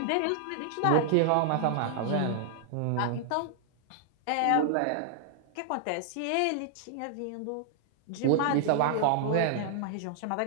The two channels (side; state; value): both; different; correlation -0.01